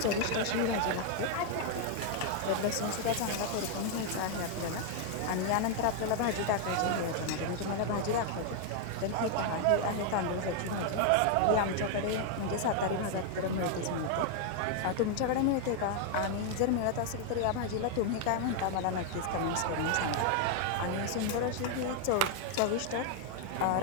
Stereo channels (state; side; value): different; both; correlation 0.00